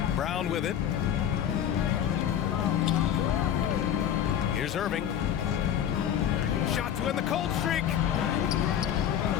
Brown with it. Here's Irving. Shot to end the cold streak.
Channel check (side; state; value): right; quieter; 9.8 dB